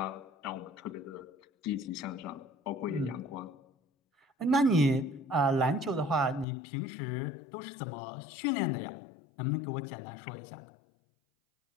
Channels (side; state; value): right; drops out; at 6.5 s